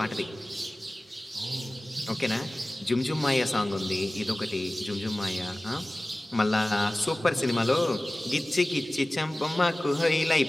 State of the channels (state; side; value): normal; both; correlation 0.97